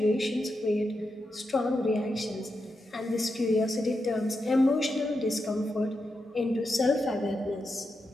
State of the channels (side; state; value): both; normal; correlation 0.86